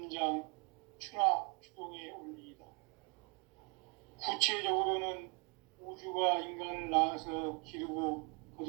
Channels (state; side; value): quieter; left; 34.1 dB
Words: 추나, 추동의 원리이다. 구체적으로는 우주가 인간을 낳아서 기르고